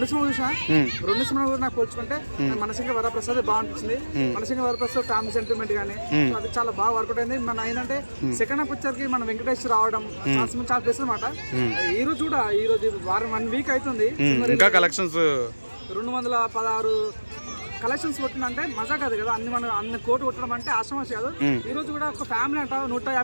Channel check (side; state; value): both; inverted; correlation -1.00